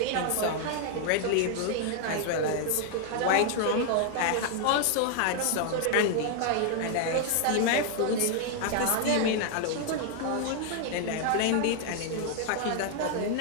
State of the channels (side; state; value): both; different; correlation 0.00